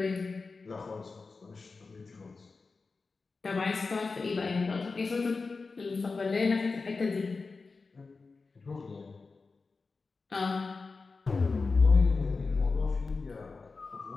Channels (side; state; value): right; quieter; 4.2 dB